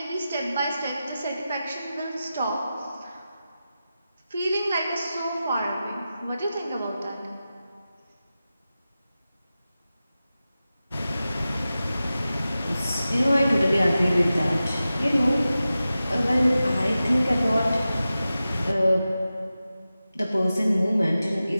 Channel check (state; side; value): inverted; both; correlation -0.94